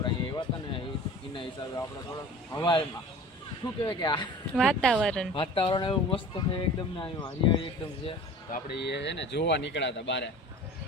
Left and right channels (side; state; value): both; normal; correlation 0.41